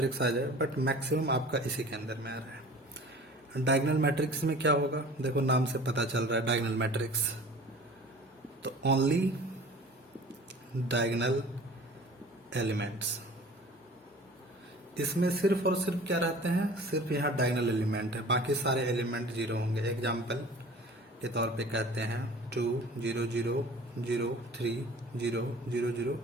आ जाए, बट मैक्सिमम आपका इसी के अंदर में आ रहा है। डायगोनल मैट्रिक्स में क्या होगा, देखो नाम से पता चल रहा है डायगोनल मैट्रिक्स, तो ओनली डायगोनल एलिमेंट्स, इसमें सिर्फ और सिर्फ क्या रहते हैं, सिर्फ यहाँ डायगोनल एलिमेंट है, बाकी सारे एलिमेंट जीरो होंगे। एग्जाम्पल के तौर पे कहते हैं 2 0 0 0 3 0 0 0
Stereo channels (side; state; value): both; normal; correlation 0.44